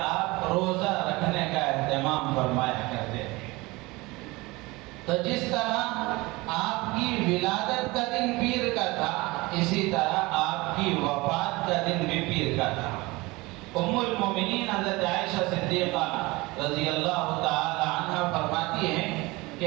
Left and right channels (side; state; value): left; quieter; 22.5 dB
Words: آپ روزہ رکھنے کا اہتمام فرمایا کرتے تھے۔ تو جس طرح آپ کی ولادت کا دن پیر کا تھا، اسی طرح آپ کی وفات کا دن بھی پیر کا تھا۔ ام المومنین حضرت عائشہ صدیقہ رضی اللہ تعالی عنہ فرماتی ہیں